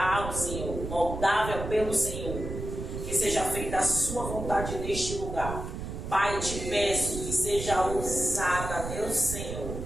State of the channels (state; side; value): noise; right; rumble, 6 dB below the sound